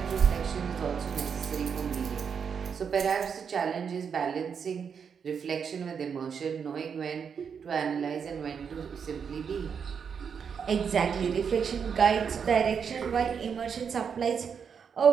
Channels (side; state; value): left; quieter; 6.8 dB